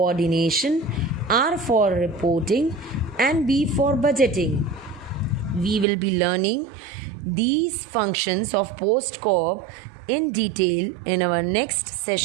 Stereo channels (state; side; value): drops out; left; at 5.9 s